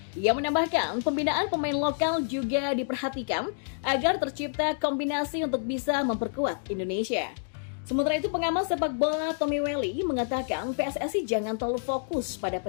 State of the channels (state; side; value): silent; right; digital silence